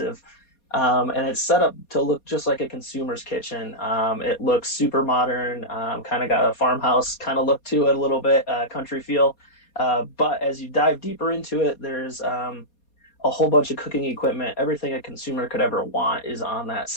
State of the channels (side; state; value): right; late; 4.2 ms